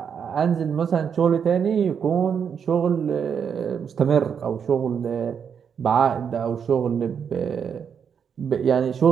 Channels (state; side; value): quieter; left; 7.3 dB